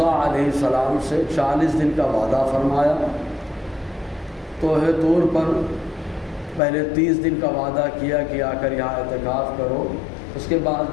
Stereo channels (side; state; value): right; drops out; at 6.6 s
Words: علیہ السلام سے 40 دن کا وعدہ فرمایا۔ کوہ طور پر پہلے 30 دن کا وعدہ کیا کہ آ کر یہاں اعتکاف کرو، اس کے بعد